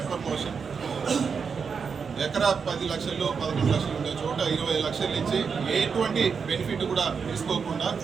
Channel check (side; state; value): left; quieter; 5.9 dB